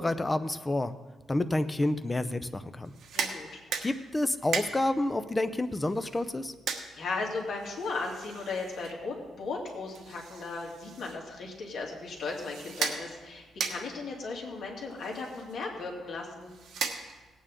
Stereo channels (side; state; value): both; normal; correlation 0.86